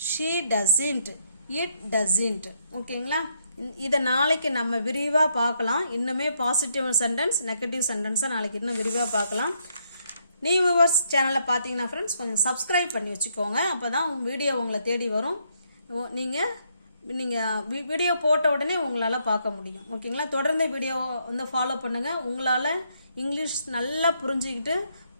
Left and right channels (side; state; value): both; inverted; correlation -0.74